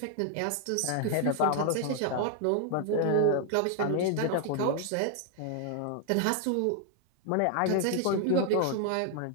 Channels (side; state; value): both; different; correlation 0.00